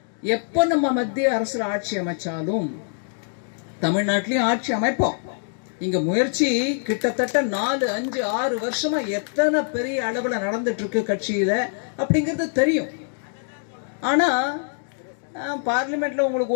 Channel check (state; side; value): silent; right; digital silence